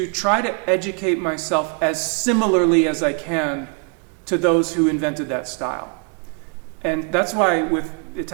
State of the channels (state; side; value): quieter; left; 38.7 dB